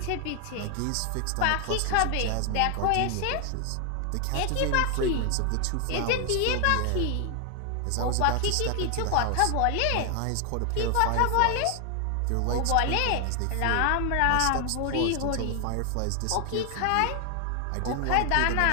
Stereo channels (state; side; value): different; both; correlation 0.00